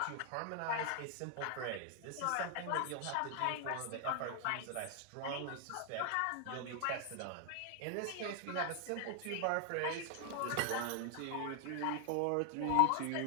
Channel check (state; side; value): different; both; correlation 0.00